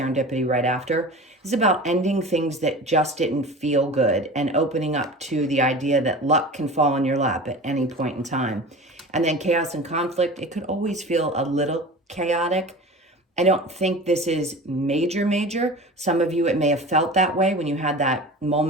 right after. It's about ending things that just didn't feel good and opening up to the idea that luck can fall in your lap at any point in time. And then chaos and conflict. It could always feel a little chaotic. I don't think this is major. Some of you, it may have felt that way when you had that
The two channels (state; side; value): normal; both; correlation 0.36